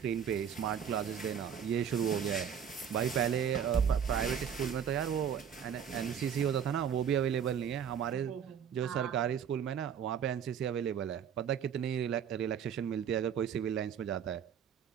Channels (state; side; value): quieter; left; 8.1 dB